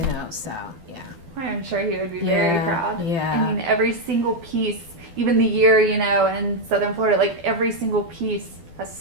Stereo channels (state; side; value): late; left; 12 ms